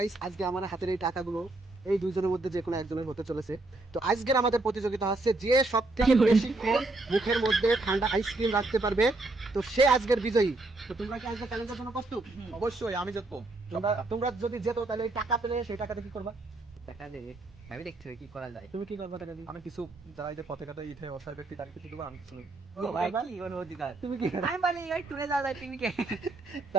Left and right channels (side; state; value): left; quieter; 3.0 dB